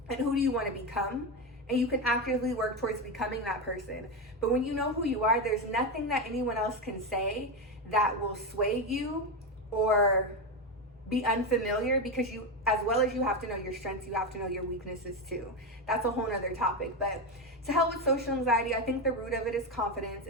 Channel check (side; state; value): both; normal; correlation 0.13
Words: And who do you want to become? And you can actively work towards becoming that person. But when you know who you are, there's nothing that anyone else can say that will sway you or be unfamiliar, because you, as well as you have to know your strengths, you have to know your weaknesses too. That's a whole nother topic. But to help with social anxiety, I think the root of it is confidence.